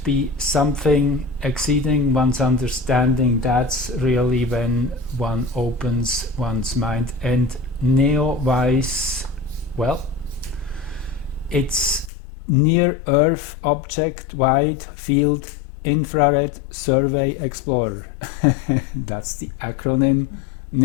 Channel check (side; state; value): right; drops out; at 12.1 s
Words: be something exceeding one's understanding, that's really when one opens one's mind. And NEOWISE, well, it's Near Earth Object Wide Field Infrared Survey Explorer. That's the acronym